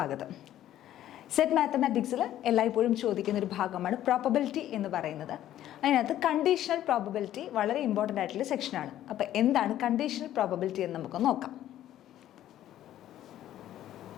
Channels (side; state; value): right; quieter; 12.4 dB